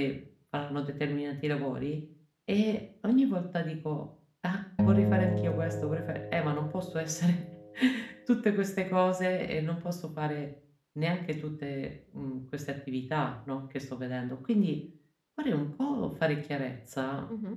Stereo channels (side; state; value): both; identical; correlation 1.00